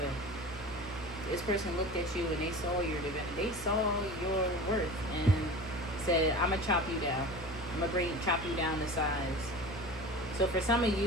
This person looked at you and they saw your divinity. They saw your worth and said, I'm gonna chop you down. I'm gonna chop you down to size. So for some of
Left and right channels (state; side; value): normal; both; correlation 0.35